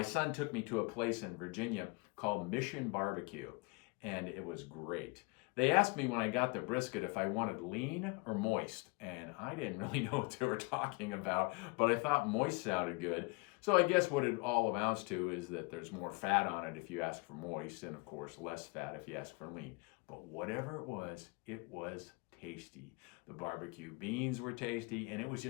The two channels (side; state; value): right; quieter; 28.5 dB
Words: son took me to a place in Virginia called Mission Barbecue, and it was great. They asked me when I got the brisket if I wanted lean or moist, and I didn't really know what they were talking about, but I thought moist sounded good. So I guess what it all amounts to is that there's more fat on it if you ask for moist, and of course less fat if you ask for lean. But whatever it was tasty. The barbecue beans were tasty, and it was